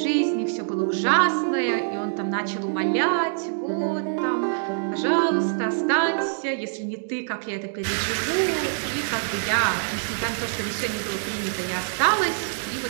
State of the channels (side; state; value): left; silent; digital silence